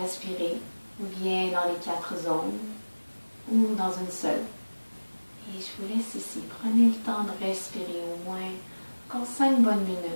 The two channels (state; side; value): inverted; both; correlation -1.00